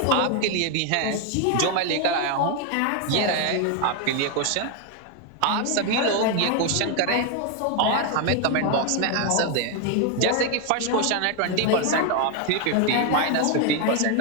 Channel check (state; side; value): different; both; correlation 0.01